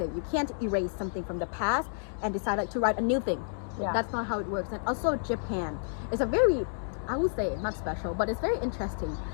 you can't erase something from the past and decide like to write a new thing. Yeah. That's not how it works. And also Japan is a very I would say not special, but it's very interesting.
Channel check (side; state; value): right; silent; digital silence